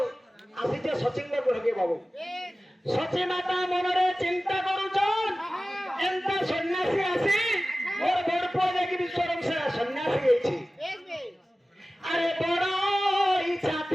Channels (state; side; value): normal; both; correlation 0.96